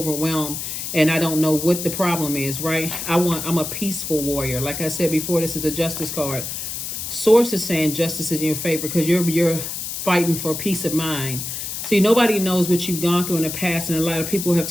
and I don't know what the problem is, right? I'm a peaceful warrior. Like I said before, this is a Justice card. Source is saying justice is in your favor, because you're fighting for peace of mind. See, nobody knows what you've gone through in the past, and a lot of people have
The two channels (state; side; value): noise; left; hiss, 5 dB below the sound